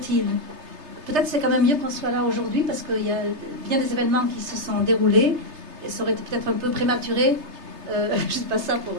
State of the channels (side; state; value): left; late; 3.3 ms